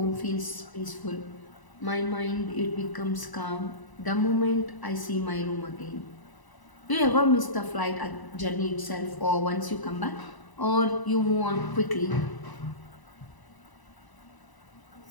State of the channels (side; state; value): right; late; 1.0 ms